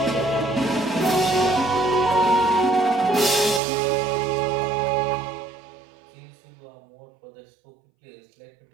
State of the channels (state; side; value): drops out; left; at 3.6 s